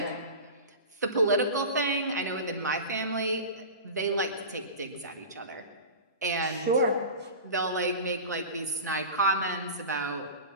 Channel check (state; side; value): inverted; both; correlation -0.31